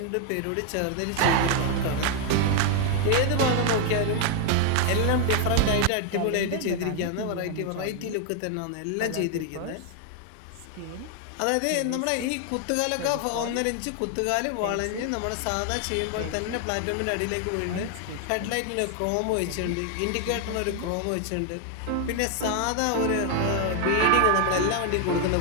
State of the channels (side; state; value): both; different; correlation 0.01